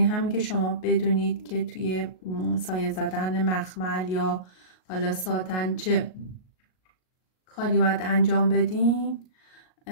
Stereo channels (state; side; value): late; right; 38 ms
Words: همین که شما بدونید که توی سایه زدن مخمل یا حالا ساتن چه کاری باید انجام بدین،